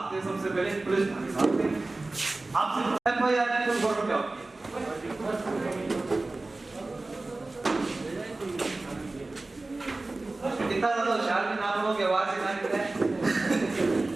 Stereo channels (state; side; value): quieter; left; 3.1 dB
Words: हैं? सबसे पहले पुलिस भागते हैं। आपसे एफआईआर की तो गौरव क्या होती है? इतना ज्यादा होशियार भी ना लोगों की आवाज से ना निकले।